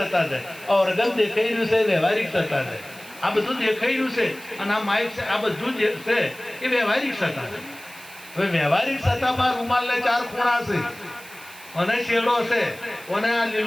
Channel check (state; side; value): noise; right; hiss, 19 dB below the sound